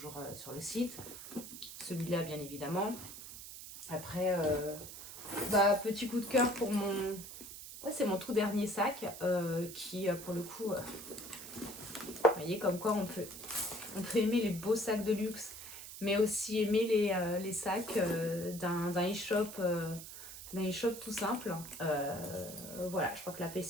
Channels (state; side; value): noise; right; hiss, 12 dB below the sound